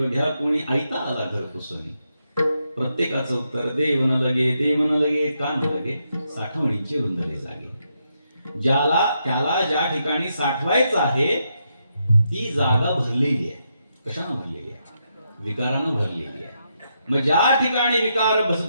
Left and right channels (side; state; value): both; inverted; correlation -0.81